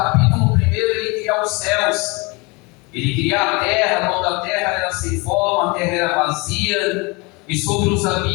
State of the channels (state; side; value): quieter; right; 27.3 dB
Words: 1, Ele cria os céus. Ele cria a terra, quando a terra era sem forma, a terra era vazia, e sobre os